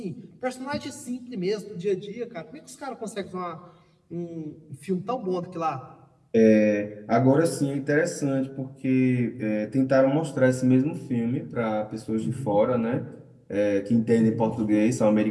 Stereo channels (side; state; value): both; identical; correlation 1.00